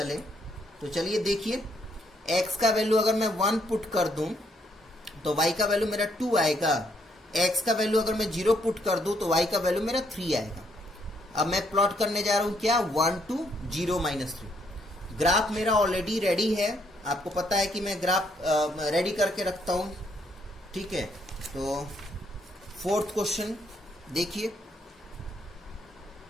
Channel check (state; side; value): normal; both; correlation 0.72